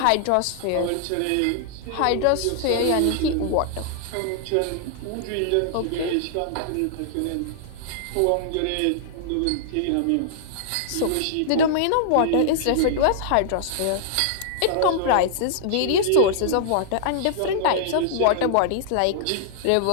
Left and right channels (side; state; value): both; different; correlation -0.01